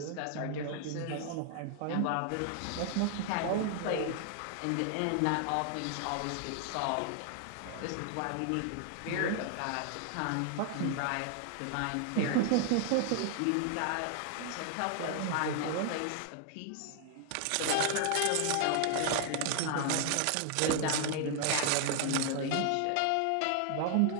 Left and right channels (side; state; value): both; different; correlation 0.00